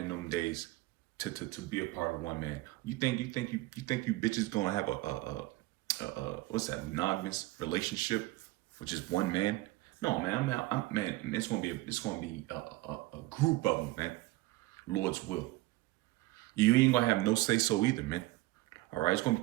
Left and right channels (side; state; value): left; quieter; 19.2 dB